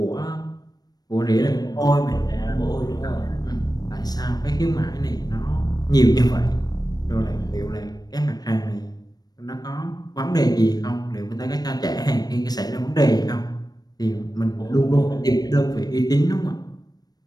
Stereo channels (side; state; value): right; late; 0.19 ms